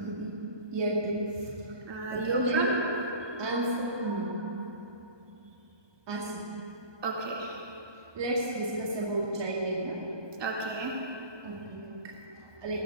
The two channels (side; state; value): left; late; 1.2 ms